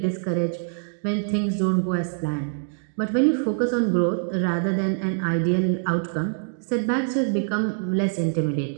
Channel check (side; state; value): left; silent; digital silence